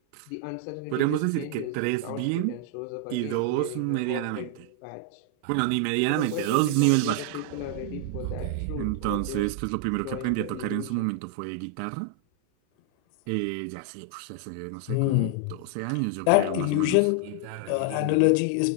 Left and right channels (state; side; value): different; both; correlation 0.00